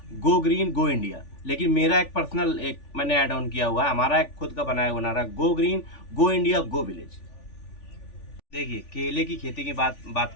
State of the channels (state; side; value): late; right; 3.4 ms